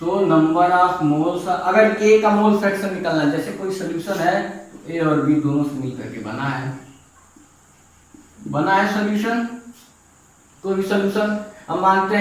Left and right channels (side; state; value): both; identical; correlation 1.00